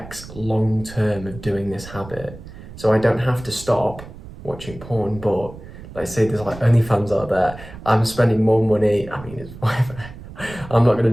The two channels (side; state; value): right; noise; rumble, 15 dB below the sound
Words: long term of doing this habit. So I don't have to stop watching porn, but let's say there's like OnlyFans out there, I'm spending more money, it's whatever, I'm not going